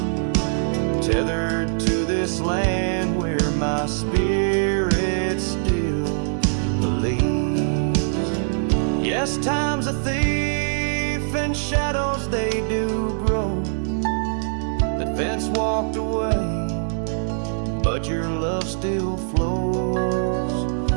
tethered to this land where my spirit still believes. Yes, time's a thief and shadows they do grow. That fence walked away, but your love still flows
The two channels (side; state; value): left; silent; digital silence